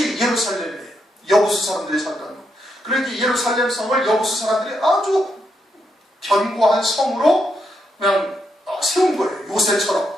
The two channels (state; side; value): normal; both; correlation 0.81